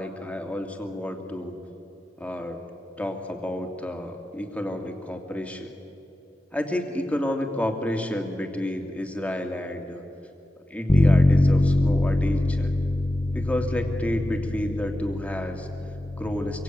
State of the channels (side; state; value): both; normal; correlation 0.92